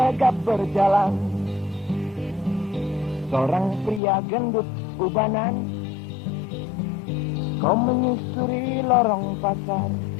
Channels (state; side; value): drops out; right; at 4.0 s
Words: berjalan, seorang pria gendut ubanan, kau menyusuri lorong pasar,